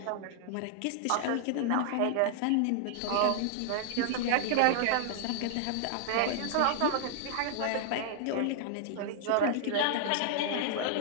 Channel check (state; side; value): different; both; correlation -0.01